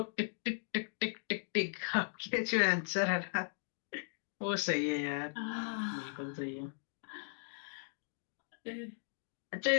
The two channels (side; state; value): right; silent; digital silence